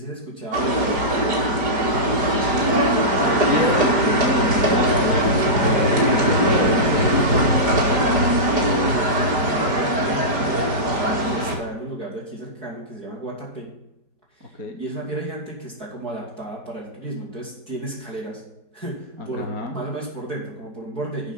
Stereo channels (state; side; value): late; left; 4.9 ms